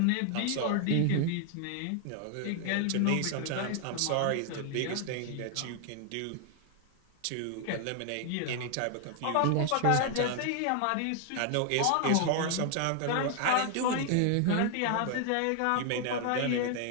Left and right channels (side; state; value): both; different; correlation 0.00